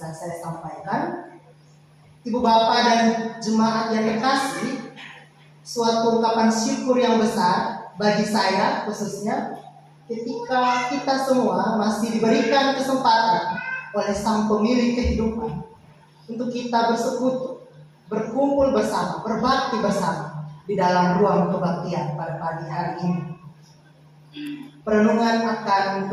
saya sampaikan. Ibu Bapak dan jemaat yang terkasih, suatu ungkapan syukur yang besar bagi saya khususnya ketika kita semua masih diberikan kesempatan oleh Sang Pemilik kehidupan untuk kita bersekutu, berkumpul bersama, berbakti bersama di dalam ruang kebaktian pada pagi hari ini. Perenungan akan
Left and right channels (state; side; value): identical; both; correlation 1.00